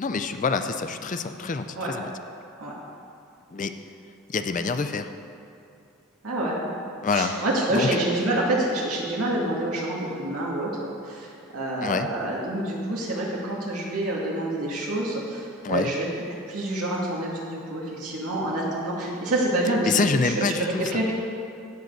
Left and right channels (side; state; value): both; normal; correlation 0.33